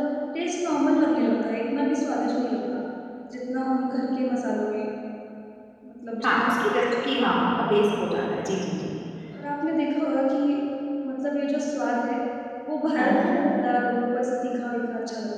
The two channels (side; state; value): both; identical; correlation 1.00